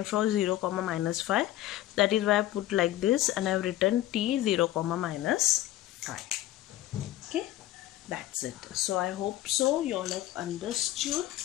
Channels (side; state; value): right; quieter; 14.5 dB